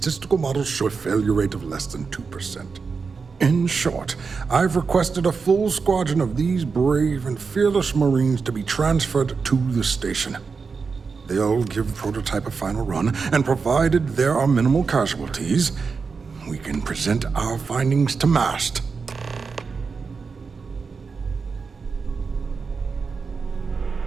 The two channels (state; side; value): quieter; left; 5.0 dB